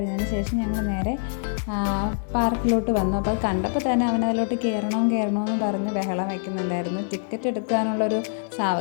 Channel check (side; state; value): right; silent; digital silence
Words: ശേഷം ഞങ്ങൾ നേരെ പാർക്കിലോട്ട് വന്നു. അപ്പോൾ അത് കണ്ടപ്പോൾ തന്നെ അവനതിലോട്ട് കയറണമെന്ന് പറഞ്ഞ് ബഹളം വയ്ക്കുന്നുണ്ടായിരുന്നു. ടിക്കറ്റ് എടുക്കാനുള്ളൊരു